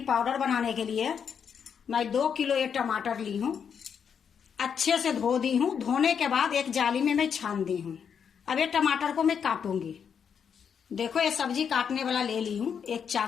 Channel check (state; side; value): quieter; right; 7.2 dB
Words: पाउडर बनाने के लिए मैं 2 किलो ये टमाटर ली हूँ। अच्छे से धो दी हूँ। धोने के बाद एक जाली में मैं छान दी हूँ। अब ये टमाटर को मैं काटूंगी। देखो ये सब्जी काटने वाला ले ली हूँ, एक